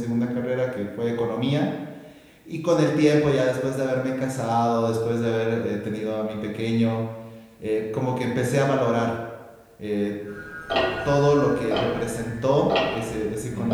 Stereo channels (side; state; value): both; identical; correlation 1.00